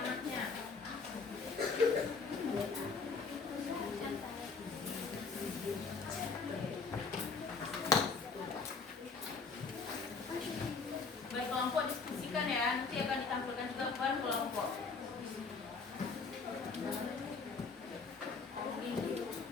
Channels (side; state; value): right; quieter; 4.7 dB